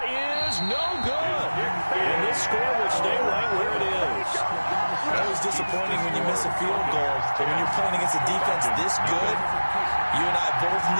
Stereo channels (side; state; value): both; inverted; correlation -1.00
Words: is no good. And this score will stay right where it is. Always disappointing when you miss a field goal. But when you're playing against a defense this good, you and I both